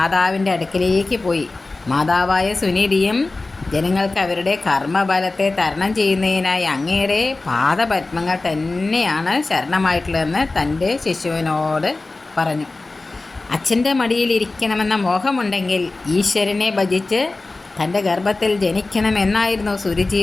അടുക്കിലേക്ക് പോയി. മാതാവായ സുനീതിയും ജനങ്ങൾക്ക് അവരുടെ കർമ്മബലത്തെ തരണം ചെയ്യുന്നതിനായി അങ്ങയുടെ പാദപത്മങ്ങൾ തന്നെയാണ് ശരണമായിട്ടുള്ളതെന്ന് തൻ്റെ ശിശുവിനോട് പറഞ്ഞു. അച്ഛൻ്റെ മടിയിലിരിക്കണമെന്ന മോഹമുണ്ടെങ്കിൽ ഈശ്വരനെ ഭജിച്ച് തൻ്റെ ഗർഭത്തിൽ ജനിക്കണമെന്നായിരുന്നു സുരുചി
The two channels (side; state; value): right; quieter; 3.3 dB